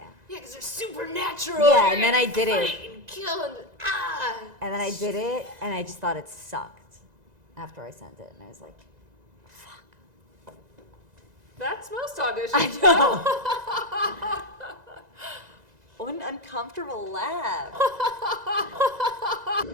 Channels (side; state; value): left; late; 2.0 ms